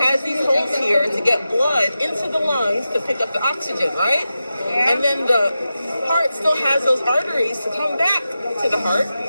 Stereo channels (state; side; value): inverted; both; correlation -0.92